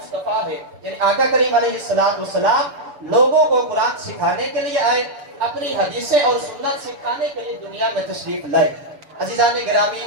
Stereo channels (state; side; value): late; left; 6.9 ms